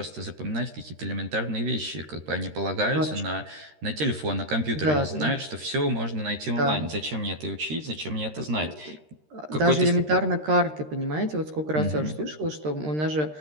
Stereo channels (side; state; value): left; late; 13 ms